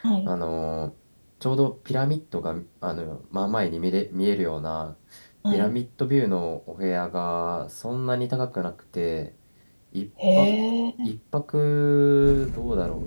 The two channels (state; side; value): inverted; both; correlation -1.00